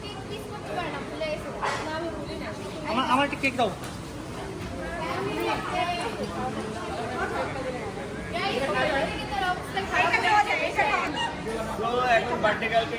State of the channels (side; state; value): both; identical; correlation 1.00